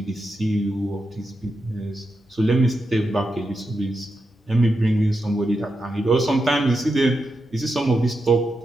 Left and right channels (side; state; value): both; normal; correlation 0.86